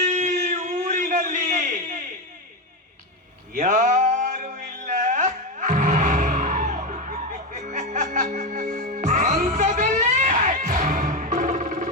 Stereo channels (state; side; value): normal; both; correlation 0.12